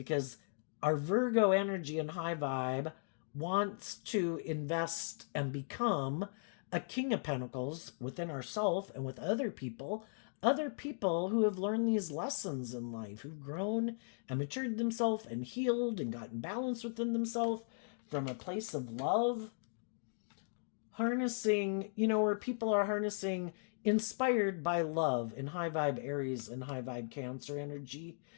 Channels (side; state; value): right; silent; digital silence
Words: our Virgo energy and high vibe wants to invest and become a King of Pentacles within ourselves and with other people who have learned these lessons in life, who've grown and matured themselves and healed and gotten balance within themselves from a place of love. Harnessing, where people are harnessing, inspired by love in high vibe Aries and high vibe Cancer energy,